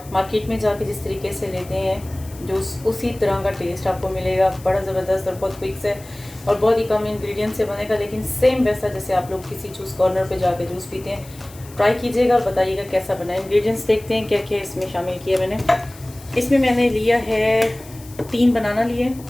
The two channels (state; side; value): noise; left; hiss, 21 dB below the sound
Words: मार्केट में जाके जिस तरीके से लेते हैं, जो उसी तरह का टेस्ट आपको मिलेगा। बड़ा ज़बरदस्त और बहुत क्विक है और बहुत ही कम इंग्रेडिएंट से बनेगा, लेकिन सेम वैसा जैसे आप लोग किसी जूस कॉर्नर पे जाके जूस पीते हैं। ट्राई कीजिएगा और बताइएगा कैसा बना है। इंग्रेडिएंट्स देखते हैं क्या क्या इसमें शामिल किया मैंने। इसमें मैंने लिया है 3 बनाना लिए,